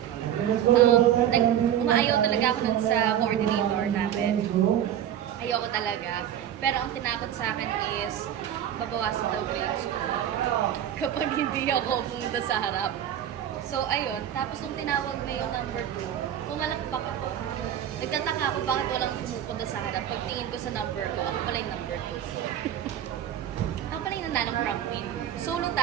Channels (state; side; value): quieter; left; 10.5 dB